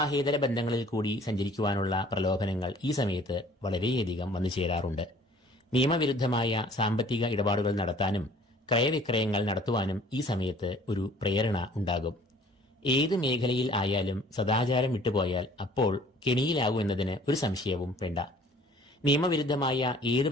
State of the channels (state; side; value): normal; both; correlation 0.53